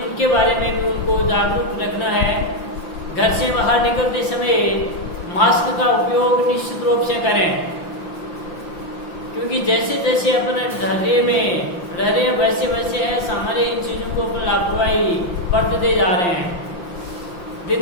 बारे में भी उनको जागरूक रखना है। घर से बाहर निकलते समय मास्क का उपयोग निश्चित रूप से करें, क्योंकि जैसे जैसे अपने धैर्य में रह रहे हैं वैसे वैसे है सामान्य इन चीज़ों को अपन लापरवाही बरतते जा रहे हैं।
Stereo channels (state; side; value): late; right; 5.8 ms